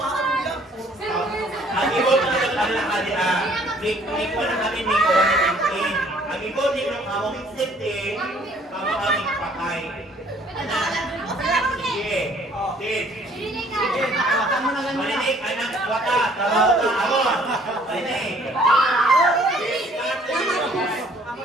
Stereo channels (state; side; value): normal; both; correlation 0.59